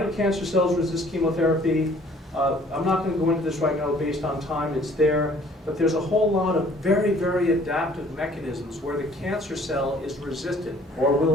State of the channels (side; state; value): both; normal; correlation 0.56